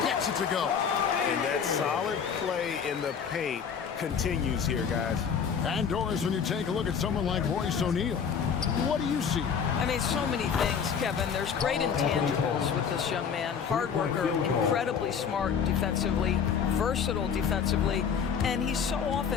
gets it to go. And that solid play in the paint continues here, guys. And Doris, when you take a look at someone like Royce O'Neal, what do you see? I mean, so many things, Kevin. There's great intangibles with this young man. Hard worker, incredibly smart defensively, versatile defensively, and he's so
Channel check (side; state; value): right; quieter; 6.9 dB